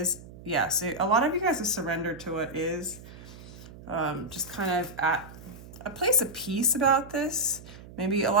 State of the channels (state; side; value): noise; right; hum, 17 dB below the sound